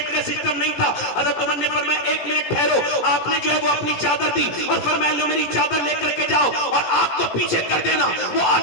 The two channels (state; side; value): late; right; 17 ms